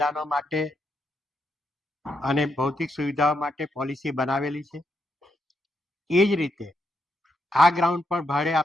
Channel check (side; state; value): both; normal; correlation 0.81